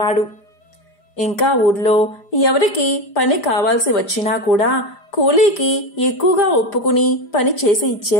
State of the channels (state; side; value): late; right; 5.0 ms